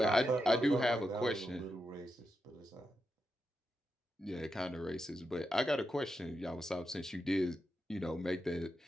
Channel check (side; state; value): both; normal; correlation 0.86